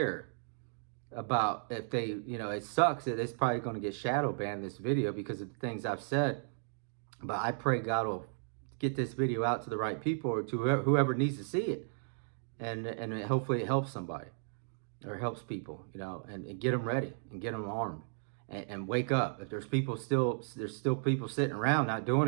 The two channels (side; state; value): left; silent; digital silence